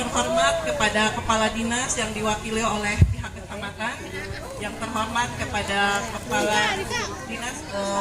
terhormat kepada Kepala Dinas yang diwakili oleh pihak kecamatan, yang terhormat kepada Kepala Dinas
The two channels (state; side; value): identical; both; correlation 1.00